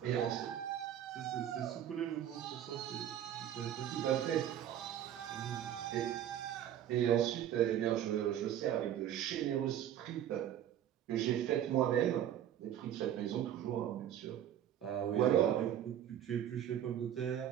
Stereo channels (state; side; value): quieter; left; 10.7 dB